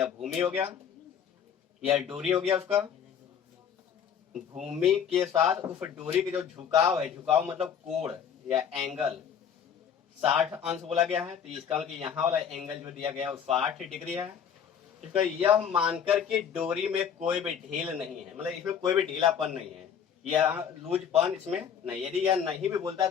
भूमि हो गया, यह डोरी हो गया उसका। भूमि के साथ उस डोरी के जो झुकाव है, झुकाव मतलब कोण या एंगल, 60 अंश बोला गया है। तो इसका मतलब यहाँ वाला एंगल जो दिया गया है वो 60 डिग्री है। इसका यह मानकर कि डोरी में कोई भी ढील नहीं है, मतलब इसमें कोई भी ढीलापन नहीं है, या लूजपन इसमें नहीं। यदि यह नहीं भी बोलता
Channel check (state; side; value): quieter; right; 7.9 dB